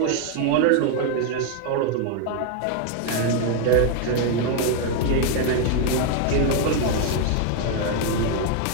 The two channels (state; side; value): different; both; correlation 0.01